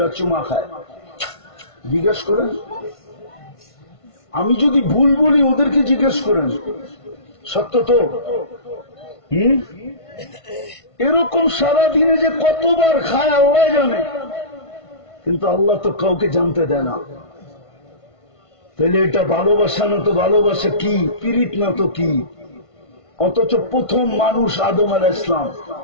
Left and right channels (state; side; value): late; right; 1.5 ms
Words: চুমা খায়। জিজ্ঞেস করেন, আমি যদি ভুল বলি ওদেরকে জিজ্ঞেস করেন, সত্য তো? এরকম সারাদিনে যে কতবার খায় আল্লাহ জানে, কিন্তু আল্লাহ তো কাউকে জানতে দেয় না। তাহলে এটা ভালোবাসা না তো ভালোবাসা কি? পীড়িত না তো কি? অথচ প্রথম মানুষ আদম আলাইহিস সালাম,